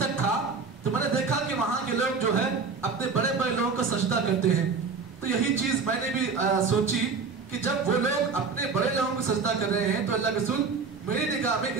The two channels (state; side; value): quieter; left; 4.9 dB